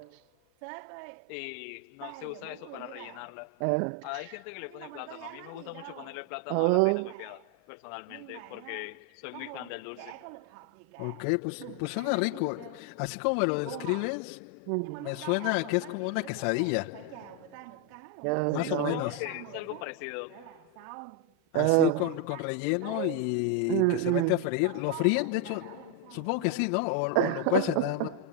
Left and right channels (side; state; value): both; different; correlation 0.01